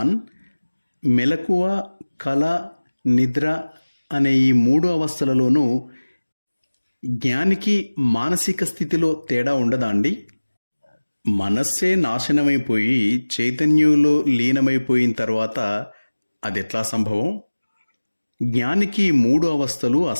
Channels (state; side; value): inverted; both; correlation -1.00